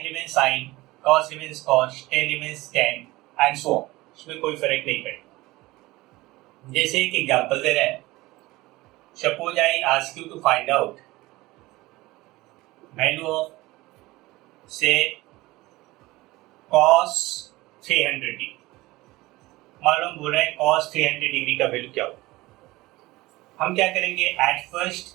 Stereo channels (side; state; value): left; quieter; 19.7 dB